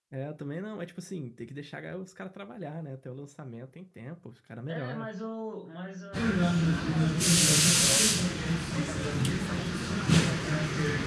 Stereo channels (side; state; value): both; identical; correlation 1.00